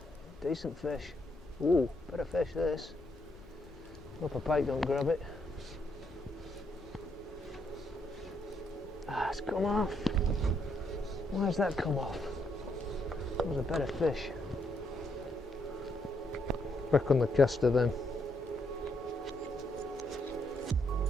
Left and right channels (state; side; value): normal; both; correlation 0.76